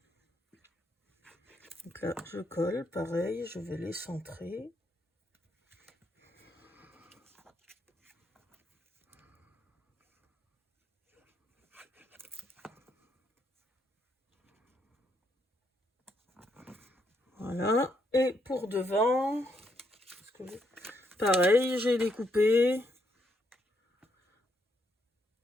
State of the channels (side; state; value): both; normal; correlation 0.76